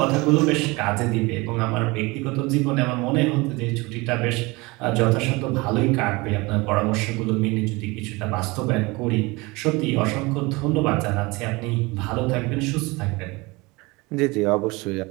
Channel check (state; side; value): quieter; left; 24.1 dB